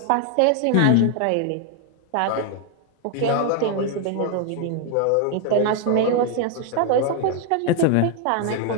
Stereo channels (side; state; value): both; different; correlation 0.00